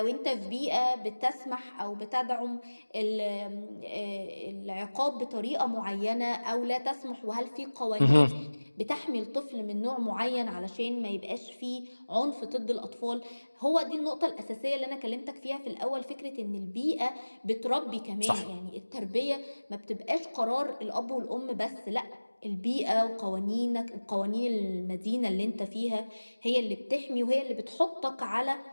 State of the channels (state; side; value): inverted; both; correlation -1.00